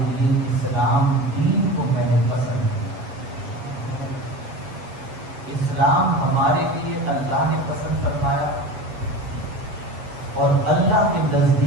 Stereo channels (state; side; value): late; left; 7.8 ms